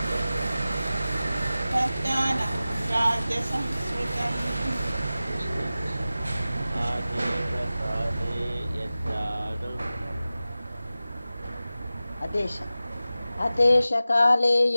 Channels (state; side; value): inverted; both; correlation -0.96